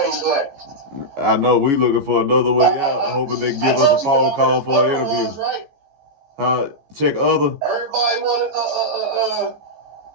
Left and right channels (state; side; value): late; left; 14 ms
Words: black. I know we looking for another way out, hoping they give us a phone call for an interview. Check other. Everybody wanted,